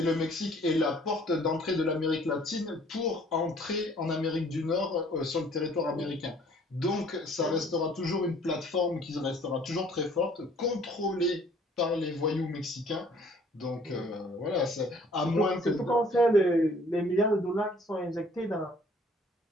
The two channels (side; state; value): both; normal; correlation 0.57